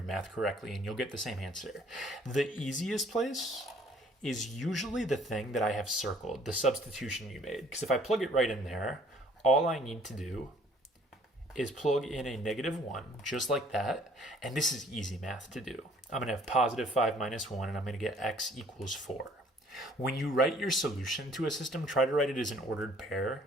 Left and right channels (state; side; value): normal; both; correlation 0.59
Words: math correctly and you'll get the same answer. The easiest place is usually the thing that I have circled, the substitution you made. Because if I plug it right in there, all I need to do is plug in a negative 1, just like that, and this is easy math to do. I'm going to have positive 5 minus 1, and I'm going to get x equals 4. When you write your solution to a system, try to write it as an ordered pair.